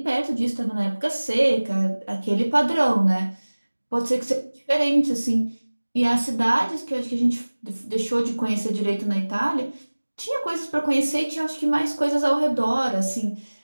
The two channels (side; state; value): both; inverted; correlation -1.00